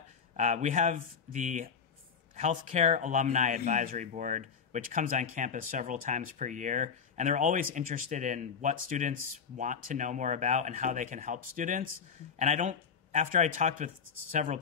We have the Healthcare Alumni Advisory Board, which comes on campus several times per year, and they're always interested in what students want to know more about and how they can help students. And after I talked with several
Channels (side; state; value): right; quieter; 6.5 dB